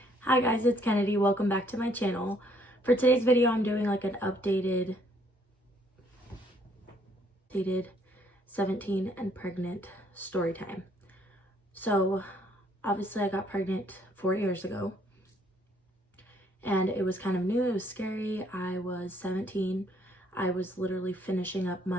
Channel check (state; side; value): normal; both; correlation 0.66